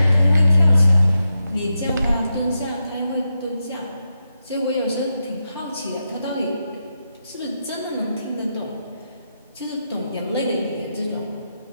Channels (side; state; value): both; inverted; correlation -0.87